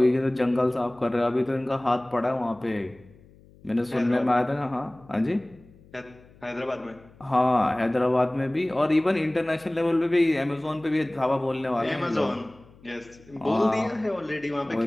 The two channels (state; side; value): noise; left; hum, 26 dB below the sound